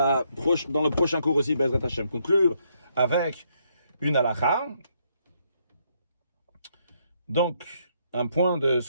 prochain cours aussi, Bezrat Hashem, conclure avec une halakha. Donc, un point de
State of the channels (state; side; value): inverted; both; correlation -0.73